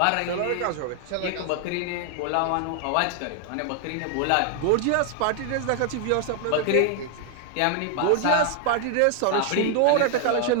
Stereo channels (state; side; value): different; both; correlation 0.00